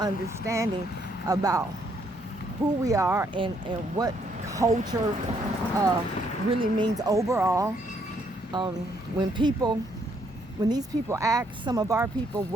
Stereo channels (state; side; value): normal; both; correlation 0.71